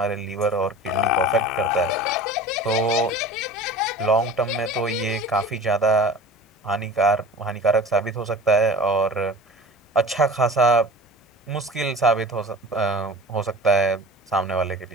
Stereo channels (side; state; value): both; normal; correlation 0.38